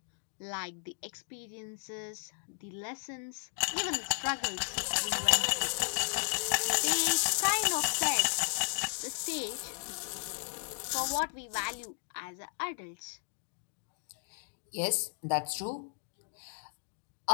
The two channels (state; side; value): silent; right; digital silence